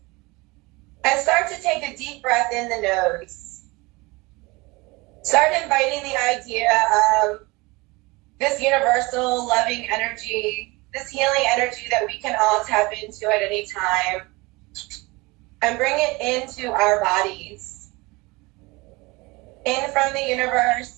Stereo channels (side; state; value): left; quieter; 24.0 dB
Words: And start to take a deep breath in the nose. Start inviting the idea of this universal loving energy, this healing energy that we can all tap into at any time, and bring it into our bodies. In from the